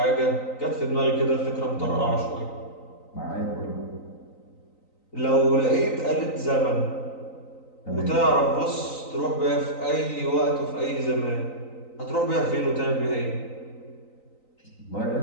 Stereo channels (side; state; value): right; late; 3.9 ms